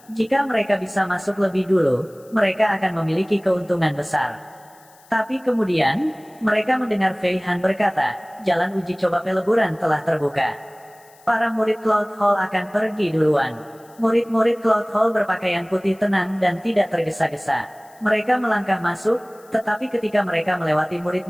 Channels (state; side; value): noise; left; hiss, 28 dB below the sound